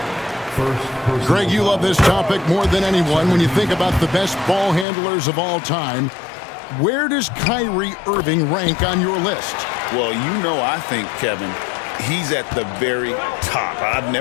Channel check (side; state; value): right; drops out; at 4.9 s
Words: Greg, you love this topic more than anyone when you think about the best ball handlers of all time. Where does Kyrie Irving rank on your list? Well, you know, I think, Kevin, he's at the very top. I've